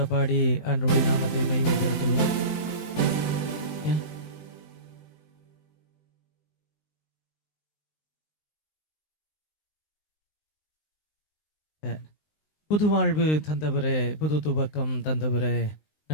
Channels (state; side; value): late; right; 19 ms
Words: பாடி ஆண்டவருடைய நாமத்தை மகிமைப்படுத்துவோம். புது வாழ்வு தந்தவரே, புது துவக்கம் தந்தவரே,